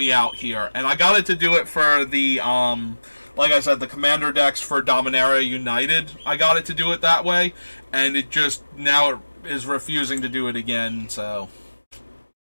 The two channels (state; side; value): inverted; both; correlation -1.00